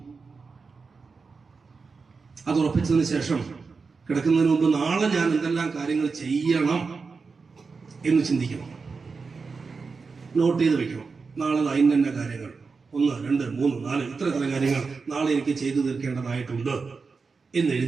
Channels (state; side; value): quieter; left; 4.7 dB